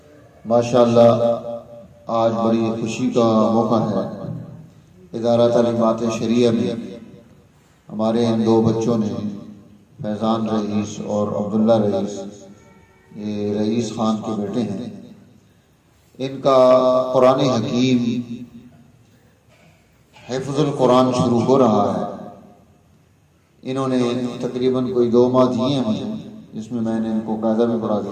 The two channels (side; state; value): both; identical; correlation 1.00